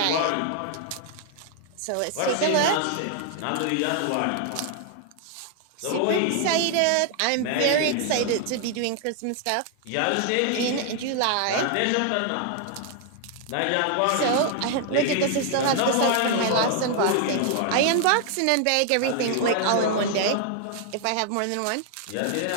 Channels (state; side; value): different; both; correlation 0.00